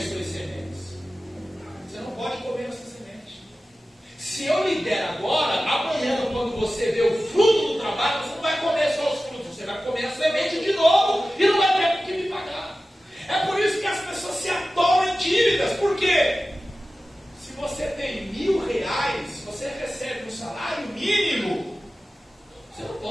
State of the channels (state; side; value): normal; both; correlation 0.95